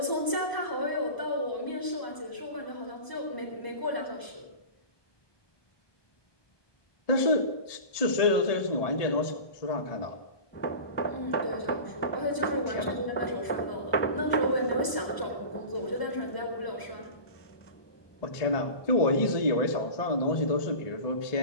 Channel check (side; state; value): right; late; 1.2 ms